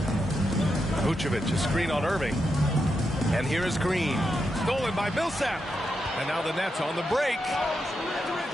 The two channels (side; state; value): both; normal; correlation 0.85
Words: Vucevic, a screen on Irving. And here is Green. Stolen by Millsap. And now the Nets on the break.